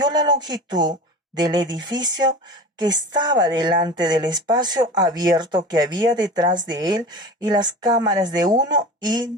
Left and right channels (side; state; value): both; normal; correlation 0.33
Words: la longitud del edificio que estaba delante del espacio abierto que había detrás de él, y las cámaras de uno